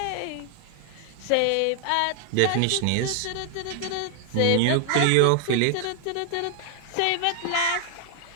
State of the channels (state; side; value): different; both; correlation 0.00